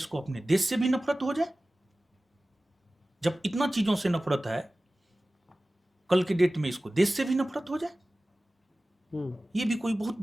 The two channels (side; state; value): both; normal; correlation 0.97